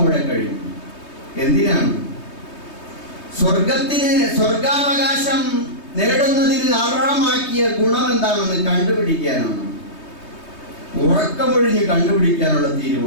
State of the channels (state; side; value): late; right; 3.2 ms